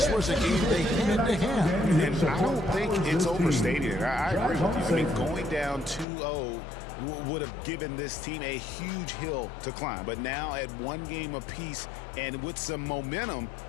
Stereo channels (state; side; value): drops out; right; at 6.1 s